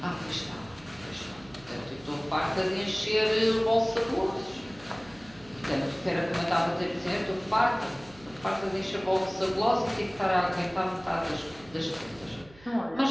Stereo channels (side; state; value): right; noise; hum, 23 dB below the sound